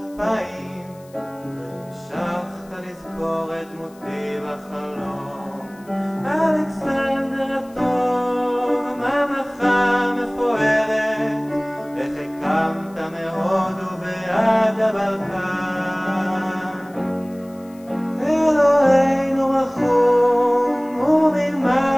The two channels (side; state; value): left; noise; hiss, 28 dB below the sound